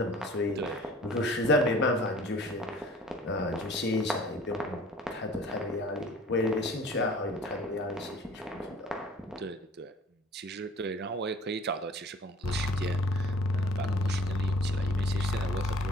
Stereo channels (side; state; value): both; normal; correlation 0.49